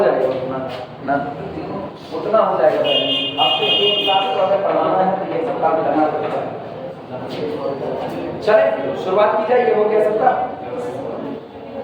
जाएगा, उतना हो जाएगा। आपको एक क्लास को अगर पढ़ाना है तो ये सब काम करना पड़ेगा। चले शुरुआत की जाए, ये हो गया सबका।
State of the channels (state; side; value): identical; both; correlation 1.00